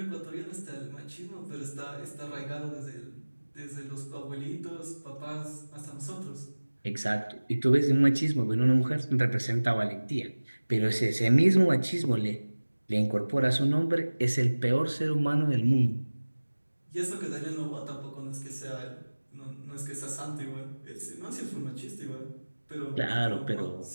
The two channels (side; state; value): both; inverted; correlation -1.00